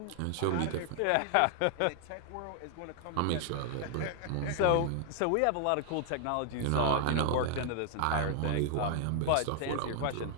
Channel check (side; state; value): both; different; correlation 0.00